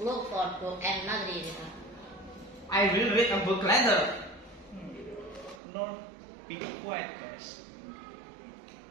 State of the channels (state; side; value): drops out; left; at 5.6 s